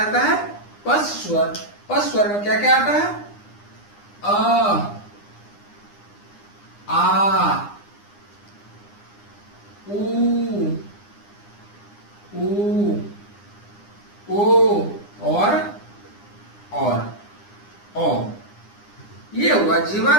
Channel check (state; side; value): late; right; 9.8 ms